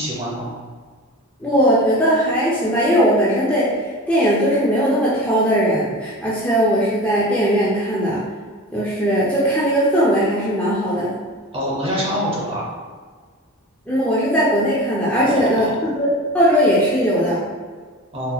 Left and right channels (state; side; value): normal; both; correlation 0.33